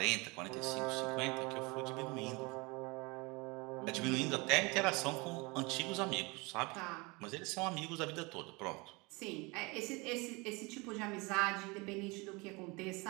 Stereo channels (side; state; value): left; quieter; 26.4 dB